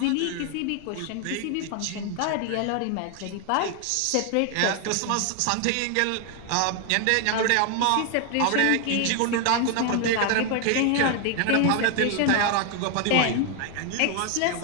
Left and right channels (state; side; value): different; both; correlation 0.00